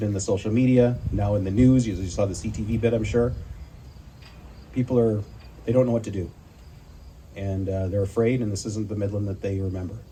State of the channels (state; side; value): identical; both; correlation 1.00